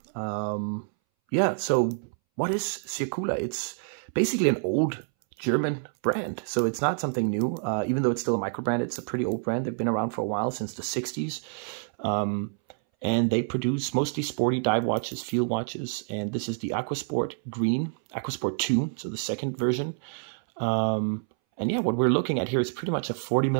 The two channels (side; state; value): left; silent; 60 dB below the other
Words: So what is Circula? It's basically an old German brand, so it's not something new. Even though it's still a microbrand, it's a pretty old brand. They've been around for a while, since the 60s. And they produce mostly sporty dive watches, field watches, and this is the Aquasport Green, Aquasport II, so the second version. And yeah, what we're looking at here is pretty much a